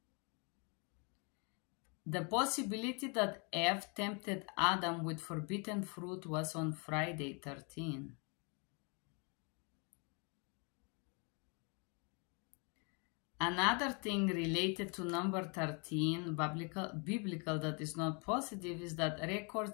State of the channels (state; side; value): quieter; right; 34.3 dB